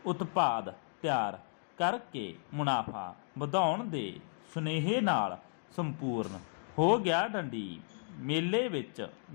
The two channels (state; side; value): silent; right; digital silence